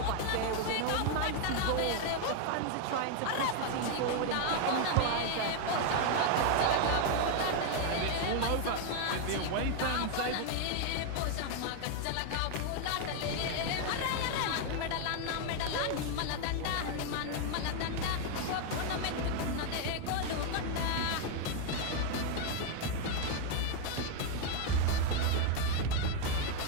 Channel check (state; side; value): different; both; correlation 0.00